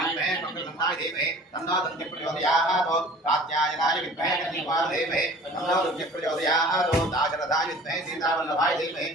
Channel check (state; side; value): normal; both; correlation 0.46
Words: विद्महे मंगलगन्धाय धीमहि तन्नो दन्ति प्रचोदयात् कात्यायनाय विद्महे कन्यकाय धीमहि तन्नो रुद्र प्रचोदयात् दाशरथाय विद्महे सीतावल्लभाय धीमहि